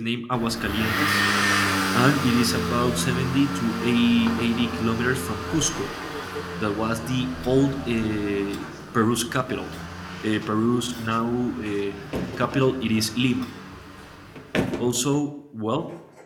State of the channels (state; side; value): identical; both; correlation 1.00